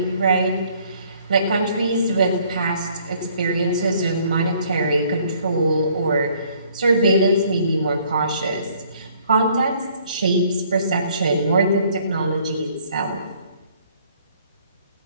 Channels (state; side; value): inverted; both; correlation -0.61